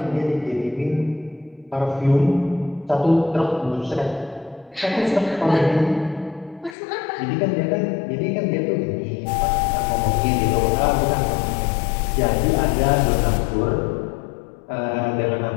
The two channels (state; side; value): drops out; right; at 6.8 s